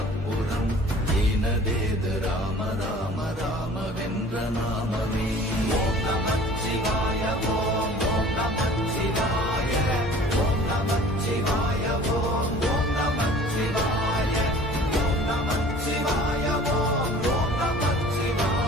அப்புறம், ஈனதேது ராம ராம ராம வென்ற நாமமே. ஓம் நமச்சிவாய ஓம் ஓம் நமச்சிவாய ஓம் நமச்சிவாய ஓம் ஓம் நமச்சிவாய ஓம் நமச்சிவாய ஓம் ஓம்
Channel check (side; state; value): both; normal; correlation 0.47